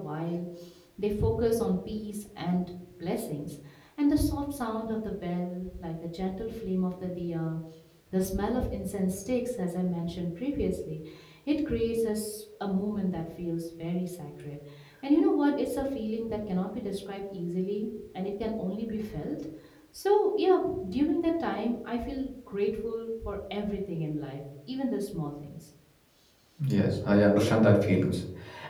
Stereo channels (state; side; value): identical; both; correlation 1.00